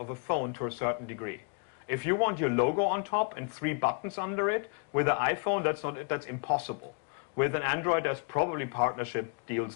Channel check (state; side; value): quieter; right; 38.3 dB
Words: a phone to a certain degree. If you want your logo on top and 3 buttons under it, with an iPhone that's impossible. With an Android, there's probably partnership deals